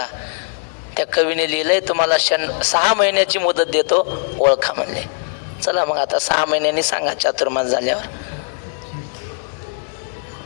त्या कवीने लिहिलंय तुम्हाला 6 महिन्याची मुदत देतो, ओळखा म्हणले. चला मग आता 6 महिन्यांनी सांगा चातुर्मास झाल्यावर.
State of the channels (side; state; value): right; silent; digital silence